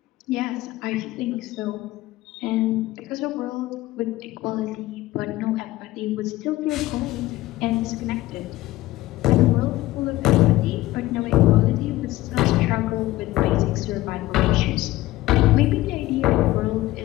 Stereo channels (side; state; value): right; quieter; 17.2 dB